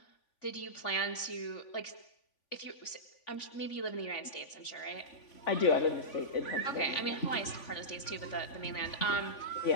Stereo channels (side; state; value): right; late; 3.5 ms